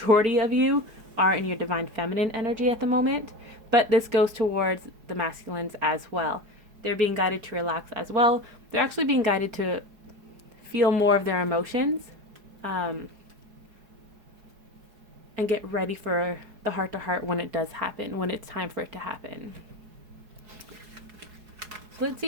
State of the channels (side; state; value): left; late; 4.7 ms